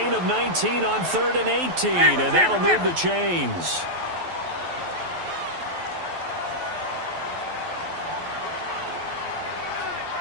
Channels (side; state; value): left; late; 12 ms